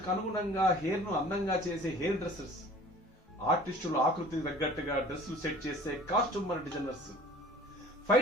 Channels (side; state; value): both; normal; correlation 0.47